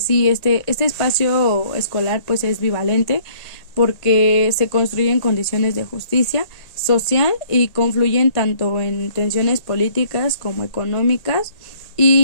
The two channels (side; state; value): right; late; 1.8 ms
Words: sí, este espacio escolar pues es bivalente porque se construyen condiciones de justicia social y confluyen tanto en tensiones políticas como económicas